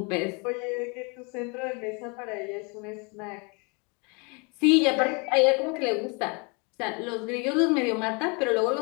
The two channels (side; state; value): right; quieter; 32.1 dB